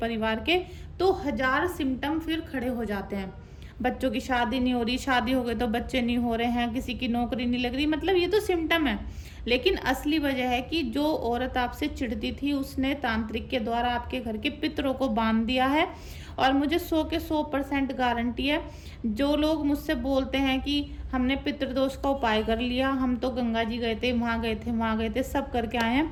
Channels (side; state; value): both; identical; correlation 1.00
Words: के, तो 1000 सिम्टम फिर खड़े हो जाते हैं। बच्चों की शादी नहीं हो रही, शादी हो गई तो बच्चे नहीं हो रहे हैं, किसी की नौकरी नहीं लग रही, मतलब ये तो सिम्टम है। लेकिन असली वजह है कि जो औरत आपसे चिढ़ती थी, उसने तांत्रिक के द्वारा आपके घर के पितरों को बांध दिया है। और मुझे 100 के 100% गारंटी है, जो लोग मुझसे बोलते हैं कि हमने पितृदोष का उपाय कर लिया, हम तो गंगा जी गए थे, वहाँ गए थे, वहाँ गए थे, सब करके आए हैं,